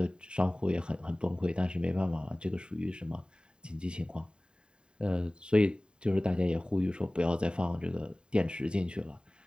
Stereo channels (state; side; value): late; left; 0.050 ms